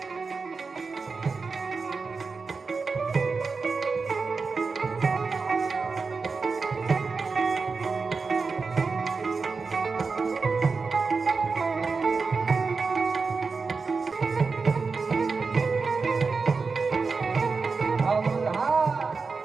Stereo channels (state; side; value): quieter; left; 4.6 dB